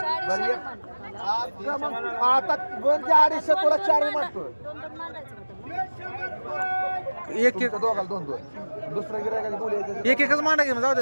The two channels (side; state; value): both; inverted; correlation -1.00